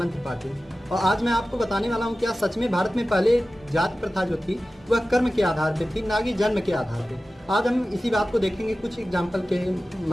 त्रिपाठी और आज मैं आपको बताने वाला हूँ क्या सच में भारत में पहले जाति प्रथा जो थी वह कर्म के आधार पे थी, ना कि जन्म के आधार पे। आज हम इसी बात को देखेंगे कुछ एग्जाम्पल के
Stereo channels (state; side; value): normal; both; correlation 0.95